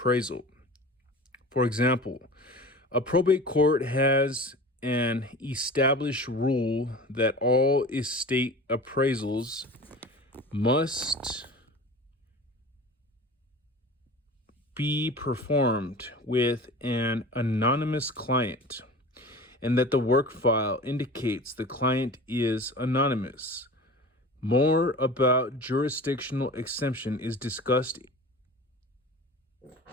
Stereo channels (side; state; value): both; normal; correlation 0.37